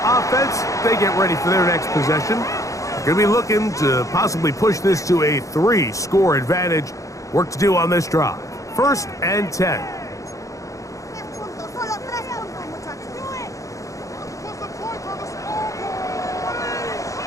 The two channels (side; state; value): right; late; 0.16 ms